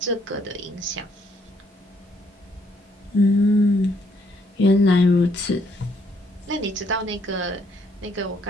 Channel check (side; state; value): both; normal; correlation 0.69